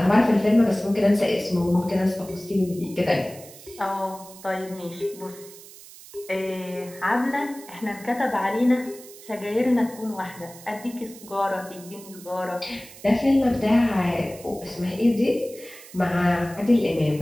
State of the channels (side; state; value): right; noise; hiss, 18 dB below the sound